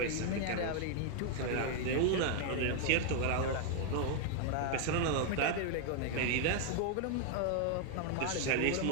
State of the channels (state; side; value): different; both; correlation 0.00